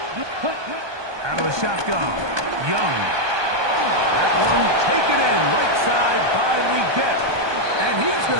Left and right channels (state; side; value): late; left; 1.2 ms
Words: Cut. Out of the shotgun, Young. That one taken in right side by Leggett. And he's going